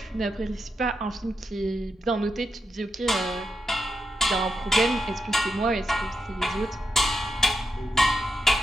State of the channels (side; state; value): both; normal; correlation 0.86